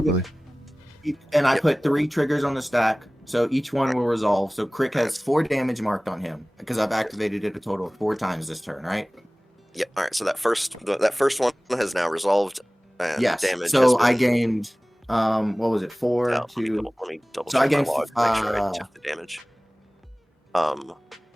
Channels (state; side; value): normal; both; correlation 0.98